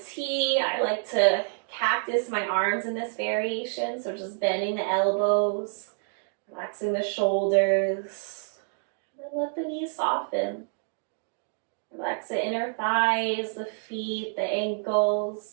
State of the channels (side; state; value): left; silent; 58 dB below the other